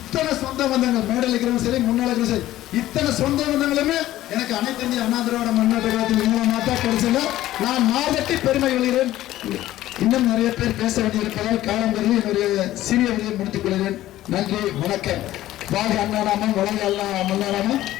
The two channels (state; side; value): quieter; right; 14.6 dB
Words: சொந்த பந்தங்கள் மேடையில் இருக்கிறவங்க சரி முன்னாள் இருக்கிற சரி இத்தனை சொந்த பந்தங்களுமே எனக்கு அனைத்து இந்திய அண்ணா திராவிட முன்னேற்ற கழகத்தின் மூலமாக தான் கிடைச்சல. நான் மாதத்தை பெருமை கொள்கிறேன். இன்னும் நிறைய பேர் பேச வேண்டியிருப்பதால் காலம் கருதி என்னுடைய சிறிய வழியை முடித்துக் கொள்கிறேன். நன்றி, வணக்கம். வாழ்க அண்ணாநாமம், வளர்க மல்லாநாமம்.